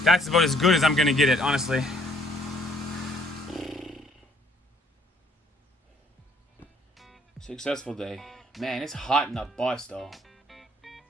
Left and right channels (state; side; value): normal; both; correlation 0.63